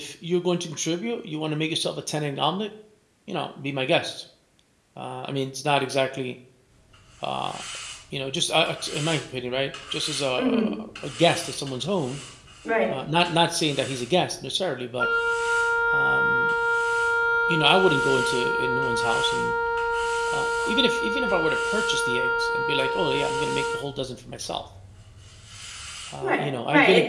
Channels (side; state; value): both; identical; correlation 1.00